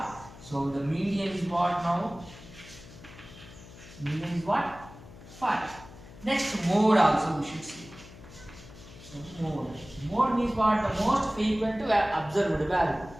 So the median is what now? Median is what? 5. Next, mode also we should see. So mode. Mode means what? The most frequent observed value.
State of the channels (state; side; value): noise; left; hum, 18 dB below the sound